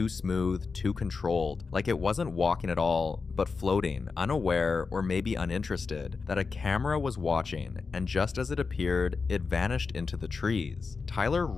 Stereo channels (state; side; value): quieter; right; 4.7 dB